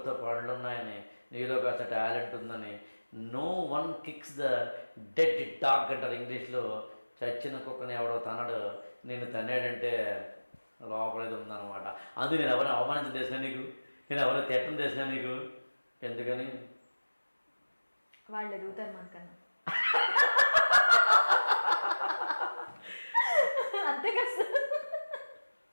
పండ్లు ఉన్నాయని, నీలో కాస్త టాలెంట్ ఉందని. No one kicks the dead dog అంటారు ఇంగ్లీష్లో. చచ్చిన కుక్కని ఎవడో తనడు, నేను తన్నాడంటే లోపలేది ఉందన్నమాట. అందుకు నేను ఎవరైనా అవమానించడం చేసినా నీకు, నేను ఎవరైనా తిట్టడం చేసినా నీకు, ఎందుకని వాళ్ళు ఎదుగుతారు మనకన్నా. అంతే కదా.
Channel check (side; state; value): both; inverted; correlation -1.00